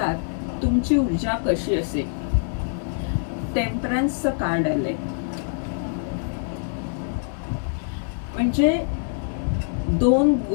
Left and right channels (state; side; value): silent; right; digital silence